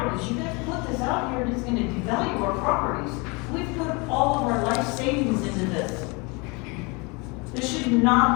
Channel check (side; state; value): right; quieter; 28.7 dB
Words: You guys put this out here and it's gonna devalue our properties. We've put all of our life savings into this. We